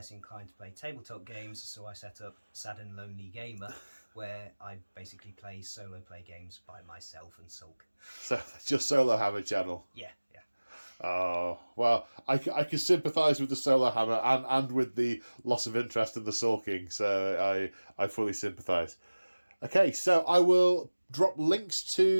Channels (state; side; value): inverted; both; correlation -1.00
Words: inclined to play tabletop games, so I set up Sad and Lonely Gamer, where I basically play solo play games by myself and sulk. So that's your solo hammer channel? Yeah. Oh, well, I can sympathise with the solo hammer and with the loss of interest in the sulking, so I fully sympathise. Okay, so I will drop links